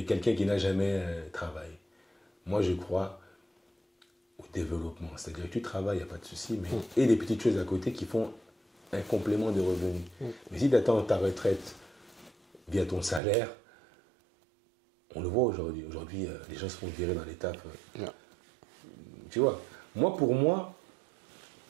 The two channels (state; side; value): drops out; left; at 13.2 s